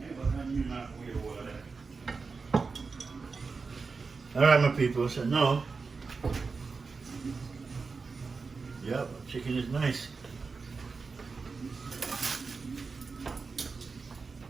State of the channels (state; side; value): quieter; left; 4.6 dB